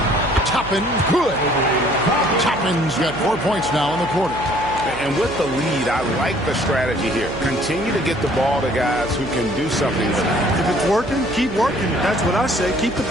Toppin, good. Toppin's got 4 points now in the quarter. And with the lead, I like the strategy here. Continue to get the ball to guys who can do something with it. If it's working, keep working. That's what I say. Keep the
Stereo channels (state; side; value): noise; right; hum, 12 dB below the sound